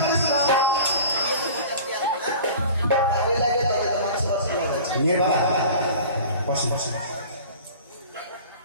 করিস না। ওই লাগে তবে তো মাংস ভাত খেলাম। মেয়ের বাবা বসেন বসেন।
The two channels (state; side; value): inverted; both; correlation -0.41